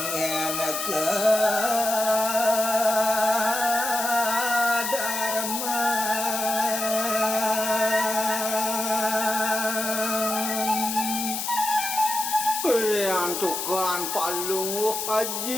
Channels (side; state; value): left; noise; hiss, 3 dB below the sound